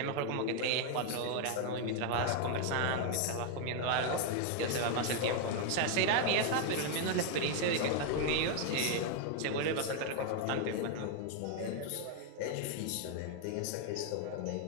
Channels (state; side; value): different; both; correlation 0.00